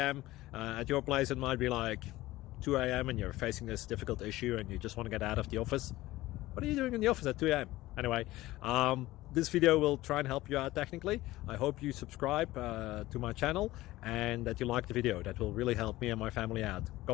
At your place it might be like 2 a.m. and you're facing this difficult issue and you just want to get out of the office. What are you doing in the office at 2 a.m.? Anyway, this video will try and help you out technically. I hope you subscribe to my channel and that you like the video. That will really help me and my family out.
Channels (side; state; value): right; quieter; 17.4 dB